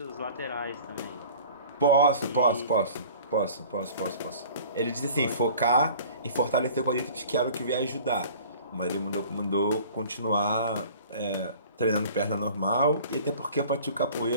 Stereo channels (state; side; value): inverted; both; correlation -0.46